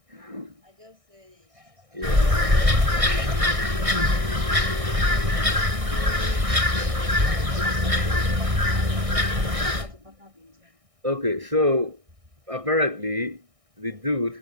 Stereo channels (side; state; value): left; late; 1.6 ms